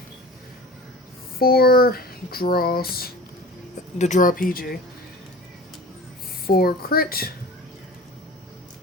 4 draws, the draw PG, 4 crit,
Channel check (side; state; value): both; normal; correlation 0.38